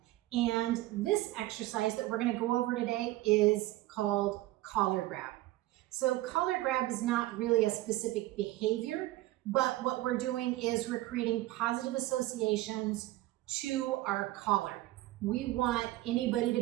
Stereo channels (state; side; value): quieter; left; 17.2 dB